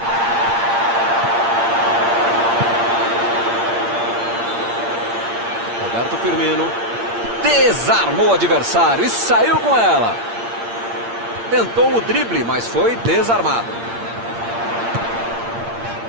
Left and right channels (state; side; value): late; left; 8.7 ms